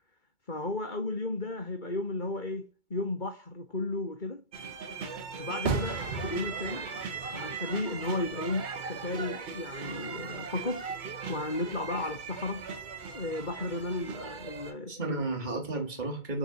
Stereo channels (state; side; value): late; right; 2.2 ms